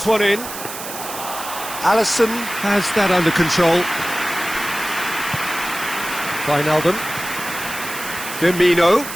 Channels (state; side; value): noise; right; hiss, 9 dB below the sound